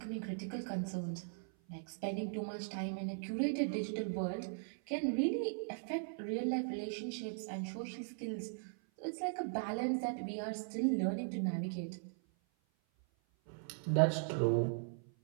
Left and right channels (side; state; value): left; silent; 52 dB below the other